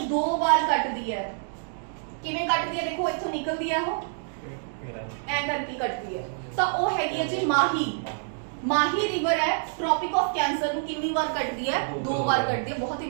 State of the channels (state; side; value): silent; left; digital silence